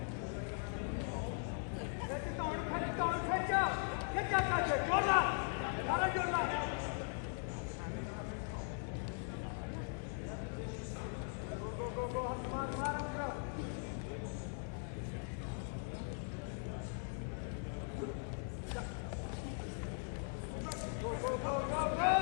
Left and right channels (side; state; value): right; silent; 51 dB below the other